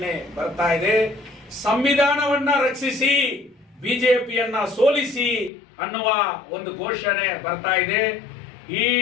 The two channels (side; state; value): right; drops out; at 5.5 s